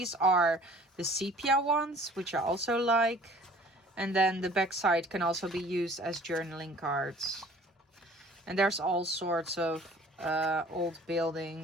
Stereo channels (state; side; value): normal; both; correlation 0.51